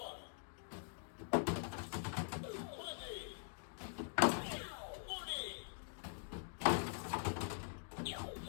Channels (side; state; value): right; silent; digital silence